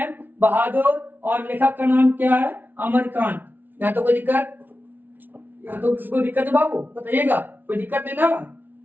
बहादुर और लेखक का नाम क्या है? अमरकांत। यहाँ तो कोई दिक्कत, यहाँ तो किसी को दिक्कत है बाबू? बताइएगा, कोई दिक्कत नहीं ना?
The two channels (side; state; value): left; late; 0.089 ms